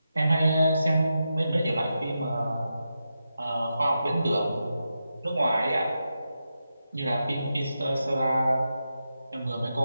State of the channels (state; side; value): inverted; both; correlation -0.88